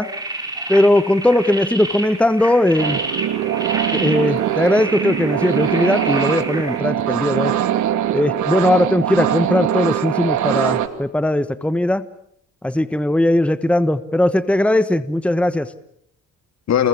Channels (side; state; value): both; normal; correlation 0.67